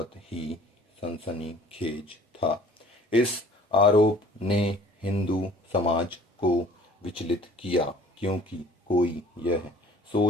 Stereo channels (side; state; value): both; normal; correlation 0.51